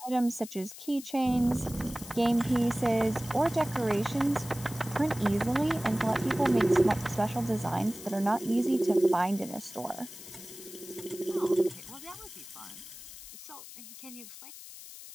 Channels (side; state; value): left; noise; hiss, 15 dB below the sound